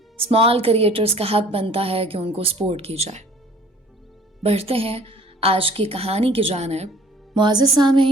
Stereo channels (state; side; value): normal; both; correlation 0.52